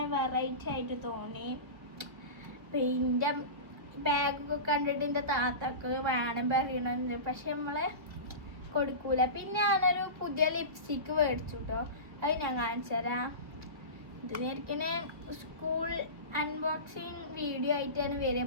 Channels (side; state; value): left; late; 1.8 ms